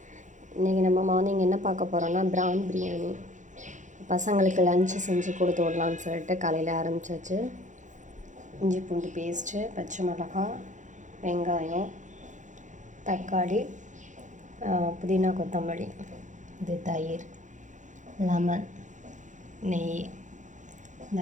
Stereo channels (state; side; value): late; left; 0.36 ms